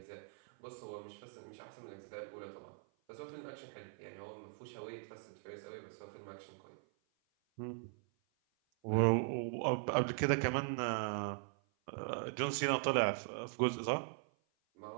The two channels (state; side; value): silent; left; 51 dB below the other